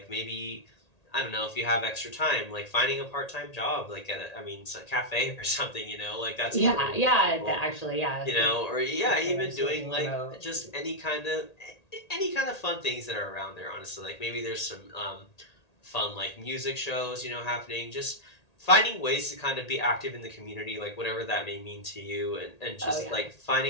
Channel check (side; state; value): right; late; 1.8 ms